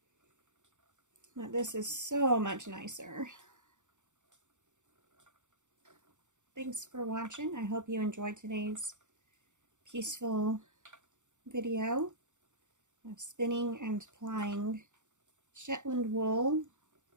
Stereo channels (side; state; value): left; late; 0.85 ms